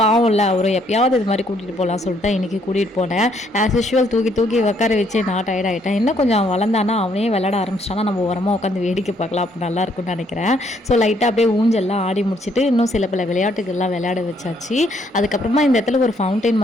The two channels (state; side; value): normal; both; correlation 0.69